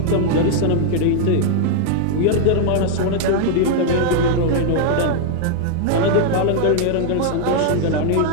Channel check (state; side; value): different; both; correlation -0.01